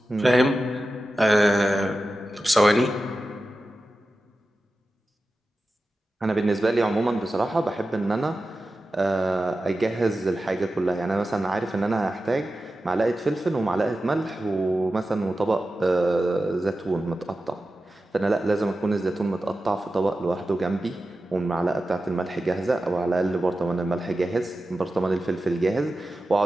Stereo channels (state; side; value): normal; both; correlation 0.93